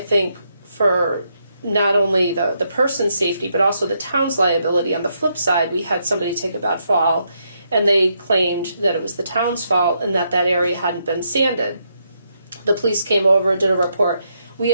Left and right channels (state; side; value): inverted; both; correlation -0.78